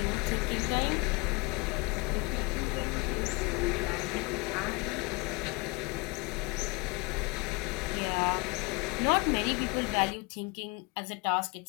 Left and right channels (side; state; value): right; quieter; 26.9 dB